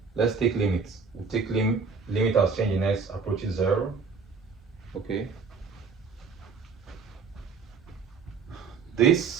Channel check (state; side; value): quieter; left; 5.2 dB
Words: Let's take limits. We'll take limit as change in x approaches 0. Okay.